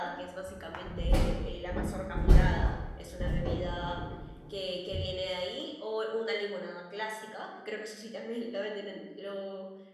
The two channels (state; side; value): identical; both; correlation 1.00